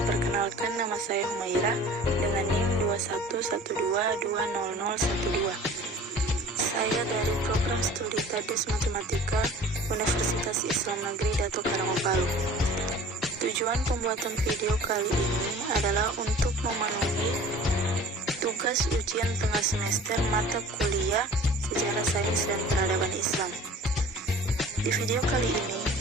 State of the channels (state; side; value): normal; both; correlation 0.45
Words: perkenalkan nama saya Humaira dengan NIM 2112200012. Saya dari program studi Tadus Matematika Universitas Islam Negeri Dato Karanggo Palu. Tujuan pembuatan video kali ini adalah untuk memenuhi tugas ujian tengah semester mata kuliah Sejarah Sains dan Peradaban Islam. Di video kali ini,